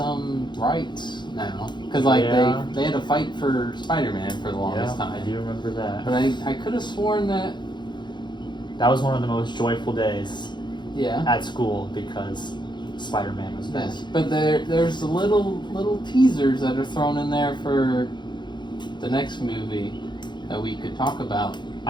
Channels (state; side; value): late; right; 0.22 ms